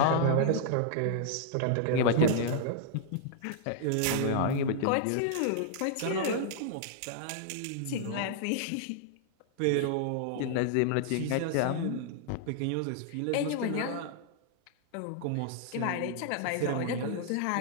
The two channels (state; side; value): different; both; correlation -0.01